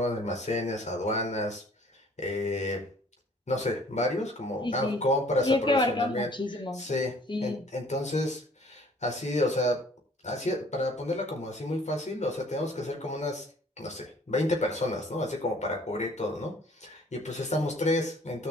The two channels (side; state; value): both; normal; correlation 0.56